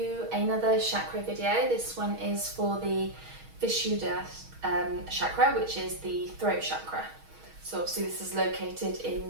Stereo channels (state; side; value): late; left; 6.3 ms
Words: another chakra video. This one is for the Vishuddha Chakra, which is the throat chakra. So obviously this is located in